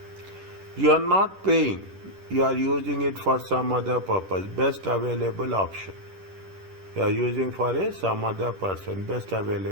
You are not paying, you are using it for some other purpose, best available option. You are using for some other person, best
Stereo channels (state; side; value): late; left; 10 ms